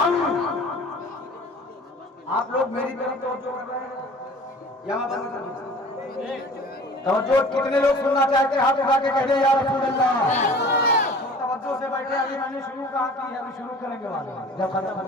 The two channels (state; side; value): normal; both; correlation 0.45